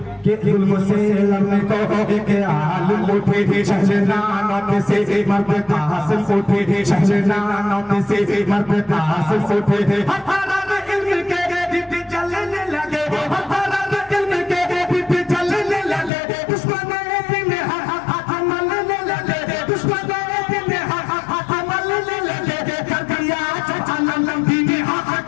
कि जुल्म से लड़ने को एक आलिम उठी थी, शहनानों से मर्द कासिम उठी थी, शहनानों से मर्द कासिम उठी थी। इल्म के दीप जलने लगे, इल्म के दीप जलने लगे, दुश्मन दिन हाथ मलने लगे, दुश्मन दिन हाथ मलने लगे, कर दिया जलालम दीन हाथ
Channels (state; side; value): drops out; right; at 16.1 s